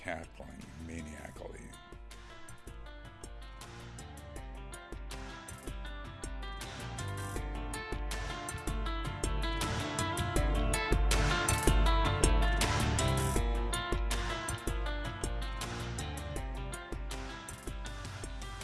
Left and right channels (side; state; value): both; identical; correlation 1.00